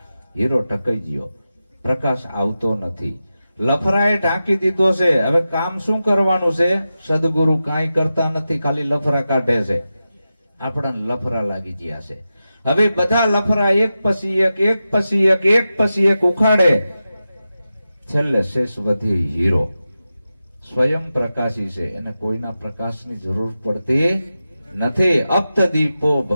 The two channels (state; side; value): inverted; both; correlation -0.92